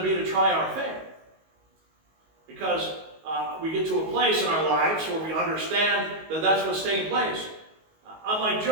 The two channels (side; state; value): left; late; 19 ms